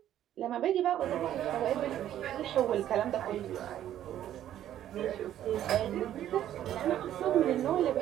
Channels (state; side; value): quieter; left; 11.6 dB